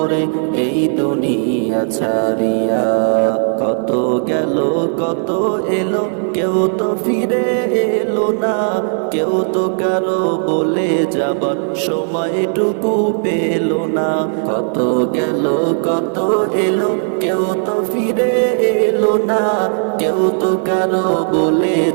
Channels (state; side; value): silent; left; 66 dB below the other